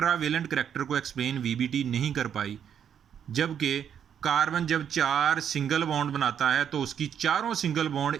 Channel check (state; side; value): quieter; left; 8.6 dB